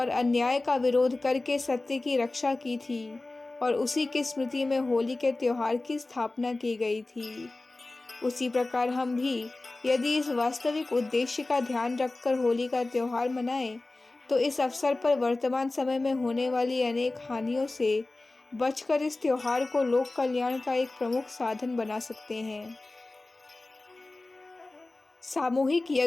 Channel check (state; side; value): quieter; right; 3.1 dB